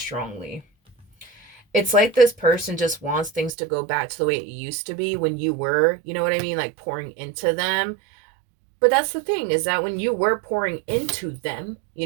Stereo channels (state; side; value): drops out; left; at 3.5 s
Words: It's like this person just wants things to go back to the way it used to be when you were, you know what I mean, like pouring into them. But that's the thing, is that when you were pouring into them, you